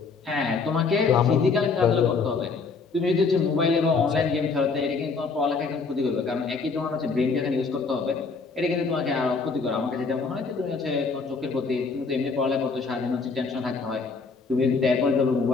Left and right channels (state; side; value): quieter; right; 4.6 dB